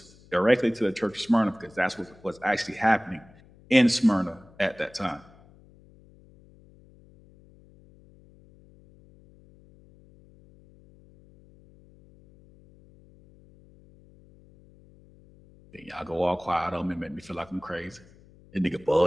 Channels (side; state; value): left; noise; hum, 26 dB below the sound